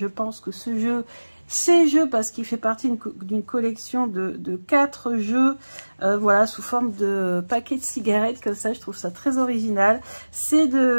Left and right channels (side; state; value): both; inverted; correlation -1.00